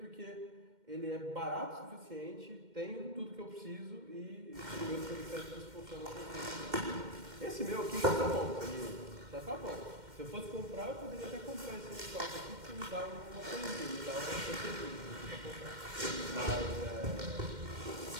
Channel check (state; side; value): late; left; 2.1 ms